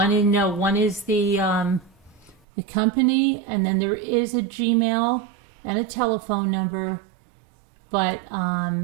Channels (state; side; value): drops out; left; at 2.4 s